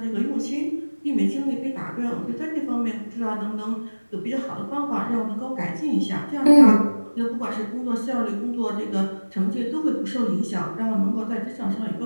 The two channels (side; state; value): both; inverted; correlation -1.00